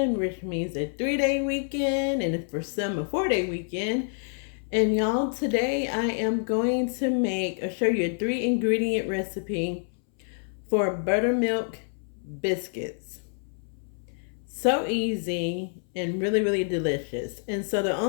which means a 3-day weekend, and for some a 4-day weekend. And y'all, today I am going to show you a 3-ingredient recipe for buttermilk biscuits. So easy and really delicious. And so the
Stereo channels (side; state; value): right; silent; 59 dB below the other